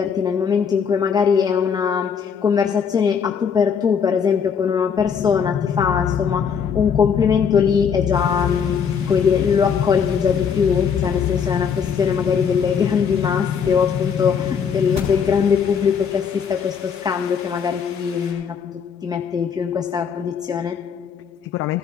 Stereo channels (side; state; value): right; quieter; 6.9 dB